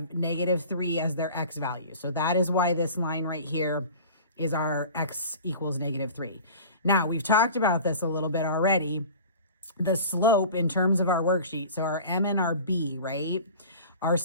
-3 as their x value. So that is why this line right here is our x equals -3. Now, we've talked about this a little bit already. The slope in terms of our worksheet, so our m and our b, right? Our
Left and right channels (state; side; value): inverted; both; correlation -0.40